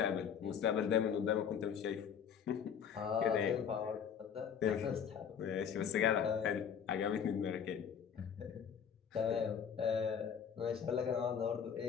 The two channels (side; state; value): right; quieter; 7.7 dB